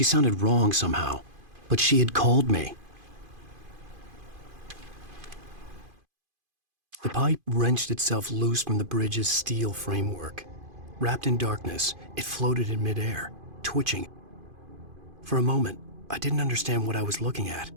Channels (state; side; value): late; left; 2.5 ms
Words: sounded wrong somehow, but she had called me. The pipe wrenched itself loose from the bridge's steel framework. Wrapped in darkness, it floated in midair, twitching. For a moment, I didn't understand what I was looking at.